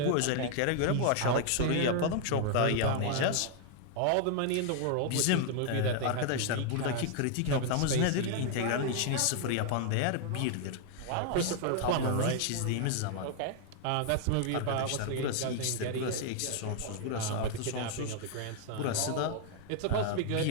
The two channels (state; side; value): different; both; correlation 0.00